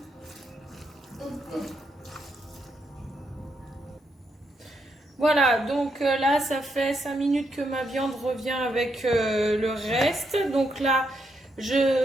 Voilà, donc là ça fait 5 minutes que ma viande revient avec le reste. Donc là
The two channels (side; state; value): both; normal; correlation 0.79